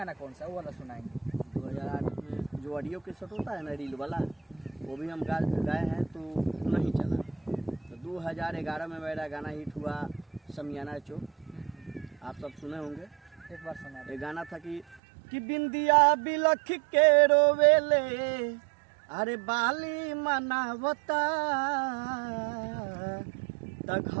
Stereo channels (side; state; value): left; drops out; at 15.0 s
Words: कौन सा है वो वाला सुनाएंगे? 2008 में जो ऑडियो के सेट होता है ना, रील वाला, वो भी हम गाए हैं तो नहीं चला। तो 2011 में मेरा गाना हिट हुआ समियाना चौक, आप सब सुने होंगे। एक बार सुना। ये गाना था कि बिंदिया बिलख के रोवेले, अरे बाली मनावता, त